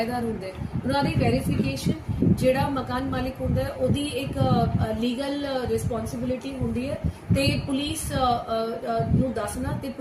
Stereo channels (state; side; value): identical; both; correlation 1.00